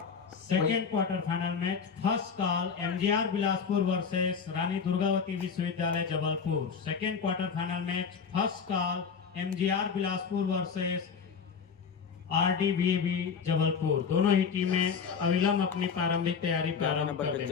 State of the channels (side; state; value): right; quieter; 6.1 dB